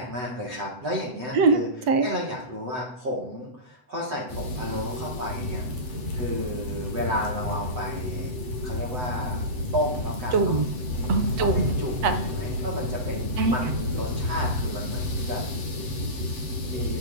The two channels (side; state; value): left; late; 8.0 ms